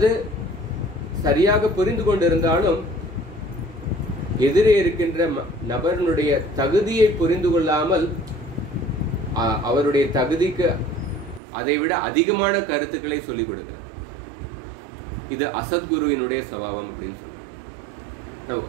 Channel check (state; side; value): drops out; left; at 11.4 s